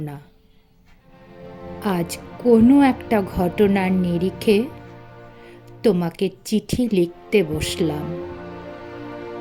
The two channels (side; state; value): both; identical; correlation 1.00